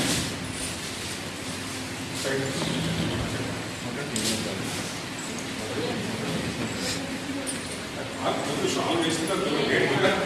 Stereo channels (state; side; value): identical; both; correlation 1.00